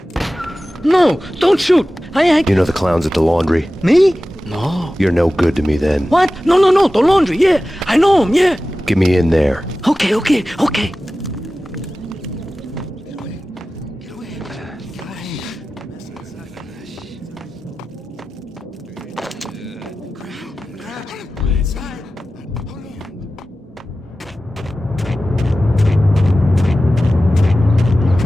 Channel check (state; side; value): normal; both; correlation 0.95